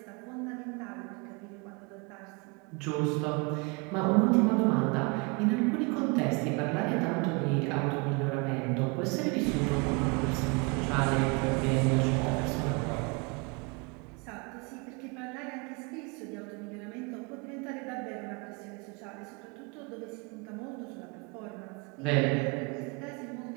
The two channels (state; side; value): quieter; left; 30.2 dB